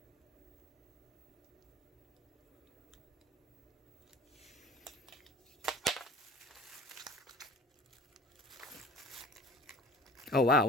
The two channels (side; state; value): both; normal; correlation 0.43